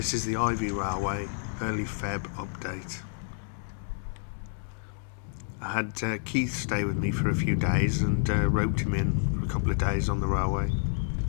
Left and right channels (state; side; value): silent; right; digital silence